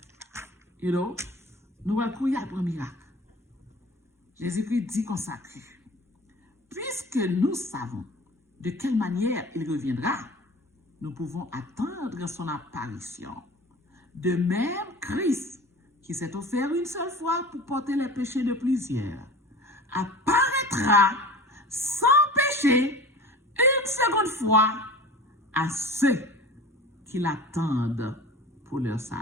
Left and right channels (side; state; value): both; normal; correlation 0.38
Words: You know? Nous allons courir pour un miracle. Jésus-Christ dit consacré. Puisque nous savons de quelle manière il reviendra, nous pouvons attendre son apparition. De même, Christ, qui s'est offert une seule fois pour porter les péchés de plusieurs, apparaîtra sans péché une seconde fois à ceux qui l'attendent pour leur